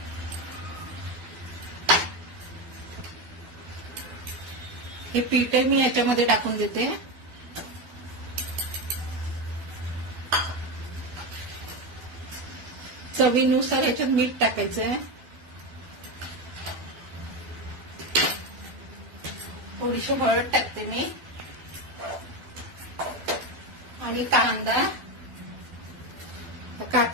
हे पीठ आहे मी याच्यामध्ये टाकून देते. चवीनुसार याच्यात मीठ टाकायचं आहे. थोडीशी हळद टाकते मी आणि कांदा,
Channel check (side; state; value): left; late; 12 ms